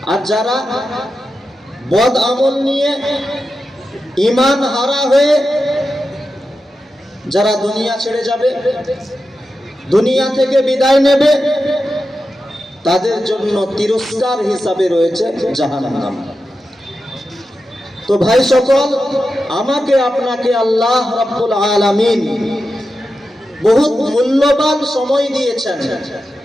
আর যারা বদ আমল নিয়ে ঈমান হারা হয়ে যারা দুনিয়া ছেড়ে যাবে, দুনিয়া থেকে বিদায় নেবে, তাদের জন্য তিরস্কার হিসাবে রয়েছে জাহান্নাম। তো ভাই সকল, আমাকে আপনাকে আল্লাহ রাব্বুল আলামিন বহুত মূল্যবান সময় দিয়েছেন।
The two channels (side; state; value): both; normal; correlation 0.90